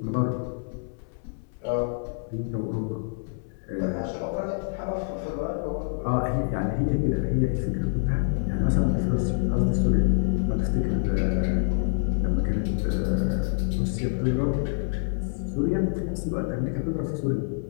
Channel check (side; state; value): right; silent; 60 dB below the other